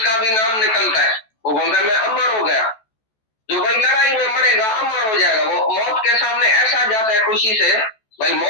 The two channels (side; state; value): right; late; 14 ms